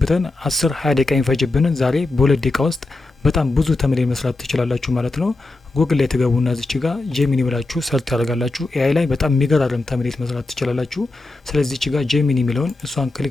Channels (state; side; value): quieter; right; 3.1 dB